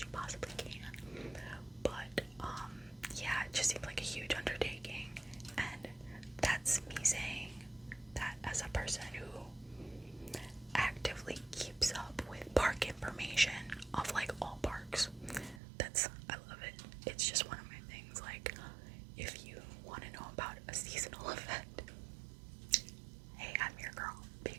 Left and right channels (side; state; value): left; drops out; at 15.6 s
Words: possibly can. But, yeah, it just seemed like a huge undertaking, and that's me saying that as a person who actively keeps up with park information of, like, all parks. I love it. It's just one of my things. Like, if you want to know about a seasonal event, hey, I'm your girl,